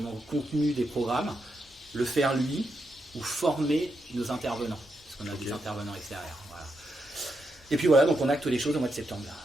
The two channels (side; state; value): both; normal; correlation 0.83